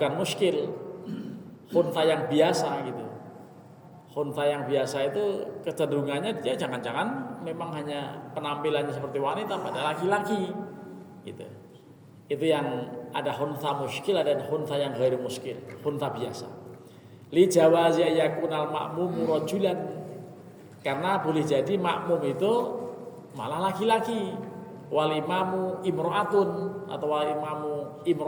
muskil. Khunsa yang biasa gitu. Khunsa yang biasa itu kecenderungannya dia jangan-jangan memang hanya penampilannya seperti wanita pada laki-laki gitu. Itu yang ada khunsa muskil, ada khunsa yang ghairu muskil, khunsa biasa. Li jawazi yakunal makmum rajulan, karena boleh jadi makmum itu malah laki-laki, wal imamu imro'atun atau wal imamu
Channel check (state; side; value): identical; both; correlation 1.00